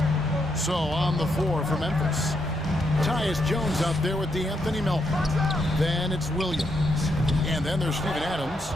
So on the floor for Memphis. Tyus Jones out there with D'Anthony Melton. Then it's Williams. And then there's Steven Adams.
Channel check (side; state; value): both; normal; correlation 0.79